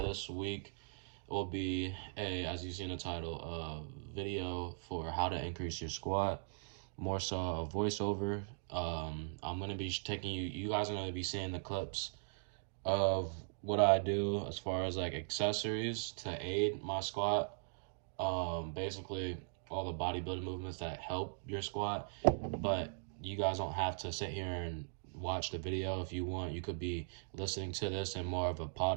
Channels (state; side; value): silent; left; digital silence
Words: this week will be as you see in the title, a video for how to increase your squat, more so a voiceover. I'm gonna be taking you guys are gonna be seeing the clips of what I do as far as like accessories to aid my squat. Basically all the bodybuilding movements that help your squat, but you guys don't have to sit here and watch the video. If you want, you could be listening to this in more of a